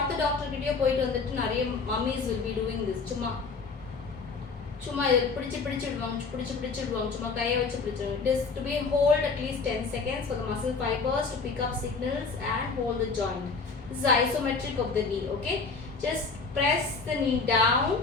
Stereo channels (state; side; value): quieter; right; 4.5 dB